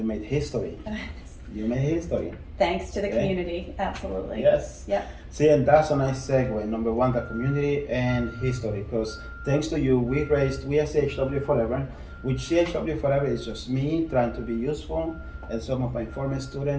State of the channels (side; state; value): both; identical; correlation 1.00